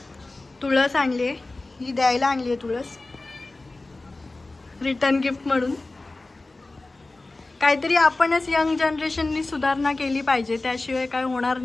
तुळस आणली आहे, ही द्यायला आणली आहे तुळस, रिटर्न गिफ्ट म्हणून. काहीतरी आपणच यंग जनरेशननी सुधारणा केली पाहिजे, त्याशिवाय काय होणार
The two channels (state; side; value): quieter; right; 3.1 dB